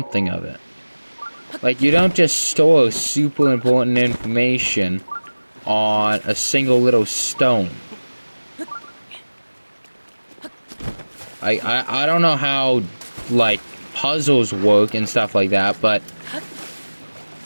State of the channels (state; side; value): inverted; both; correlation -1.00